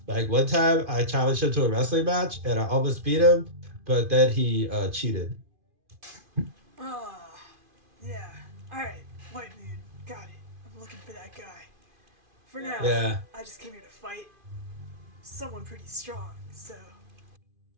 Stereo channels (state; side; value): late; left; 2.5 ms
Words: like one time I challenged him to a wrestling match and I almost beat him, but then he cheated. Ah, yeah. Alright, White Moon, got it. I'm looking for that guy. For now, Yeah. I just came here to fight someone pretty strong, so.